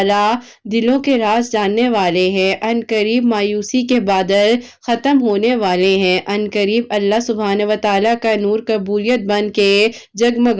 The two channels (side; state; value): both; identical; correlation 1.00